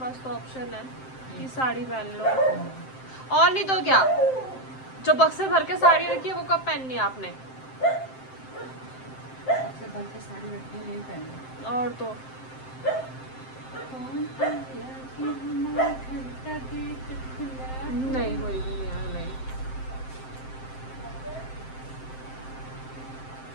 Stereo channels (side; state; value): right; late; 7.7 ms